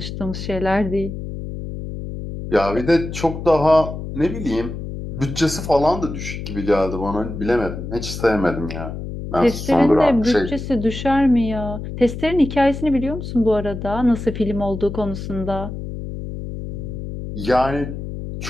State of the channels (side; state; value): left; noise; hum, 8 dB below the sound